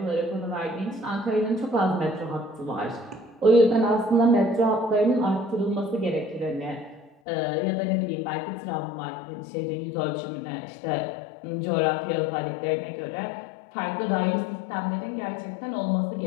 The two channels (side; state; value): right; drops out; at 7.1 s